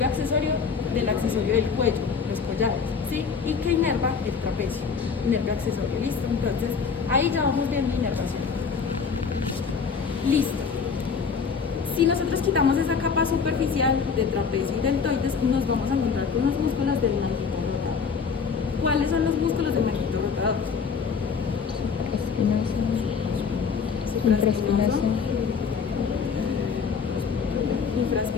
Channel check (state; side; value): quieter; right; 5.8 dB